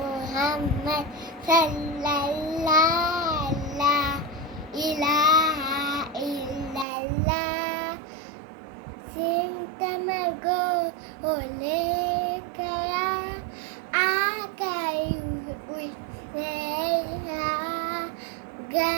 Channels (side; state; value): left; drops out; at 6.9 s